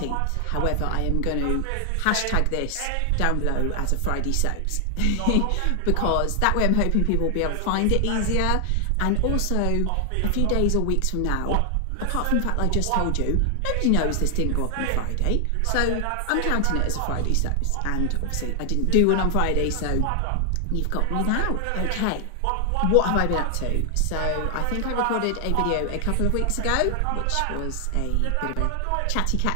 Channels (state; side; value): different; both; correlation 0.00